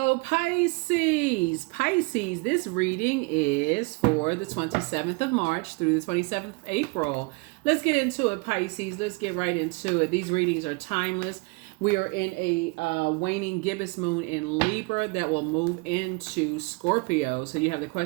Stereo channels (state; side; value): quieter; left; 28.8 dB